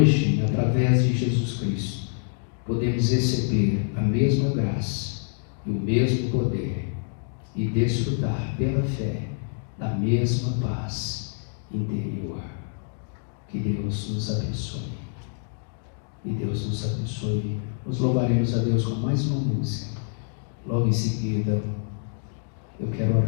através de Jesus Cristo, podemos receber a mesma graça e o mesmo poder e desfrutar pela fé da mesma paz interior. Que Deus nos abençoe. E Deus nos abençoe. Nos louvaremos a Deus com mais uma música. Logo em seguida, eu quero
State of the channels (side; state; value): right; silent; digital silence